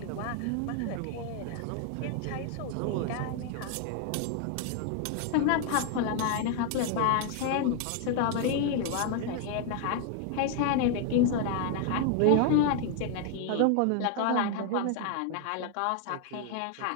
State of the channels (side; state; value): both; different; correlation 0.00